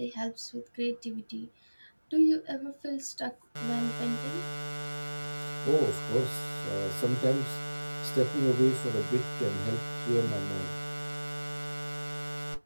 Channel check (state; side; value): inverted; both; correlation -1.00